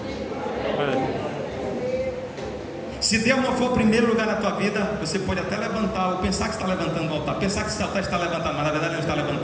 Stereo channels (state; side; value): identical; both; correlation 1.00